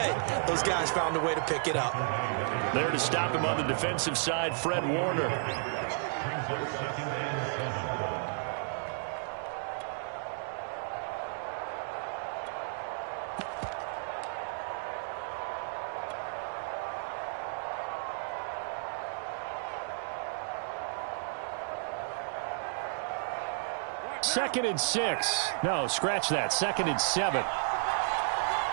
those guys found a way to pick it up. There to stop him on the defensive side, Fred Warner. Second and 6. No, scratch that. Second and 7.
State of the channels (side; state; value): left; silent; digital silence